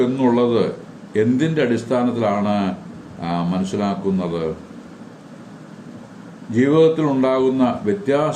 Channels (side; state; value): both; identical; correlation 1.00